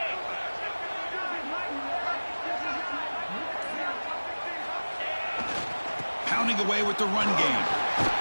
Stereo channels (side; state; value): both; inverted; correlation -1.00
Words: Pounding away with the run game.